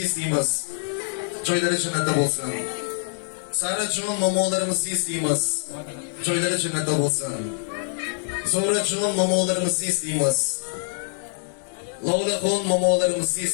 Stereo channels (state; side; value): silent; right; 62 dB below the other